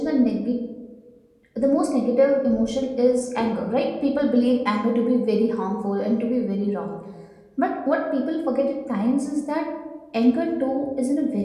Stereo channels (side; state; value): both; identical; correlation 1.00